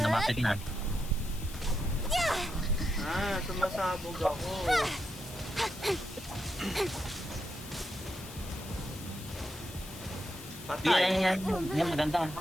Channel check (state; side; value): noise; left; hiss, 15 dB below the sound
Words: lumapit na. Ah, sumasabog ako. Patay. Yan. Yan, maganda.